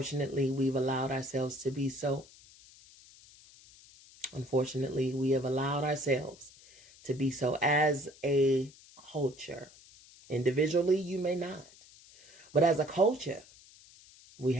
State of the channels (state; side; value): noise; left; hiss, 23 dB below the sound